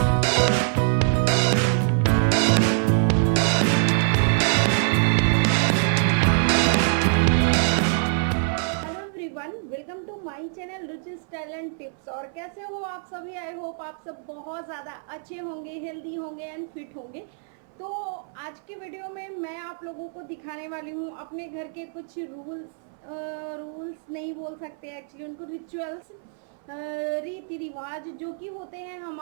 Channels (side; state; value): left; silent; 62 dB below the other